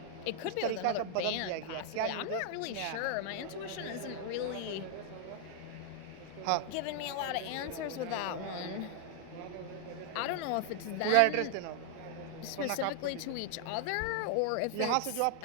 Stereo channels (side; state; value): both; different; correlation 0.00